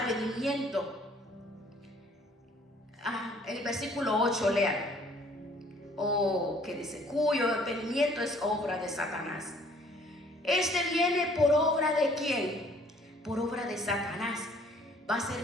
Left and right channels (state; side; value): normal; both; correlation 0.58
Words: el versículo 8, lean, que dice, cuyo advenimiento es obra de Satanás, Este viene por obra de ¿quién? Por obra de Satanás. Va a